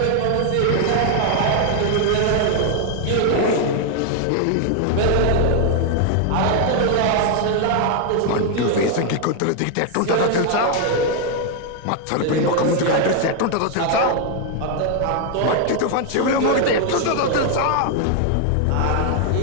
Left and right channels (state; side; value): different; both; correlation 0.00